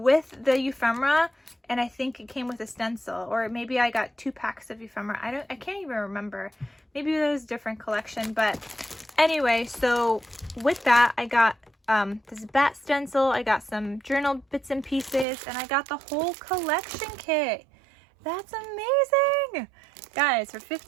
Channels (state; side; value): drops out; left; at 15.2 s